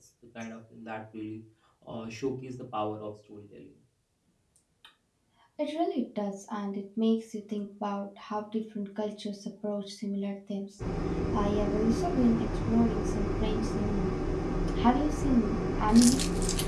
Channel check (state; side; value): identical; both; correlation 1.00